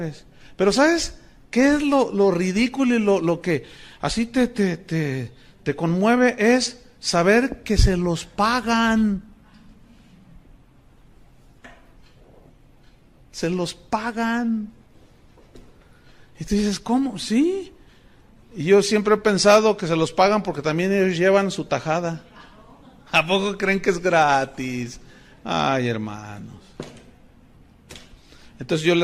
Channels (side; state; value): both; identical; correlation 1.00